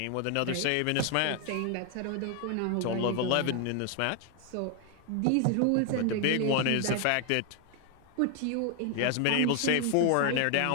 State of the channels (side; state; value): both; different; correlation 0.00